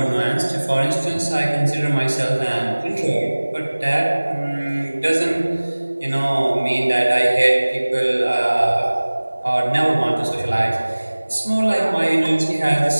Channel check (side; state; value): both; inverted; correlation -1.00